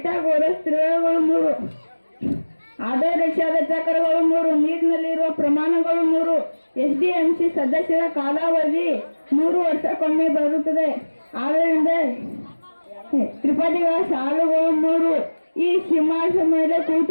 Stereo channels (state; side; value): inverted; both; correlation -1.00